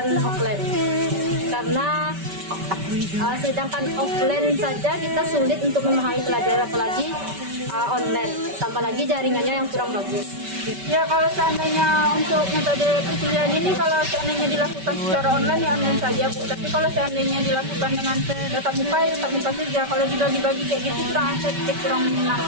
offline karena sedangkan offline saja kita sulit untuk memahami pelajaran, apalagi online, tambah lagi jaringannya yang kurang bagus. Ya, kalau seandainya untuk metode perkuliahan ini, kalau seandainya dilakukan secara online ya online saja Bu. Tapi kalau seandainya dilakukan dengan tatap muka ya tatap muka saja. Kalau dibagi-bagi kayak gitu kurang efektif, kurang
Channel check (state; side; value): late; left; 5.2 ms